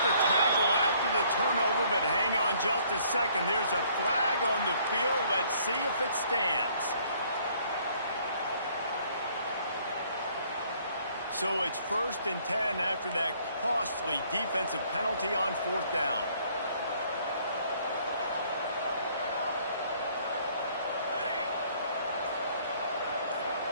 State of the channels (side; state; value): both; inverted; correlation -0.62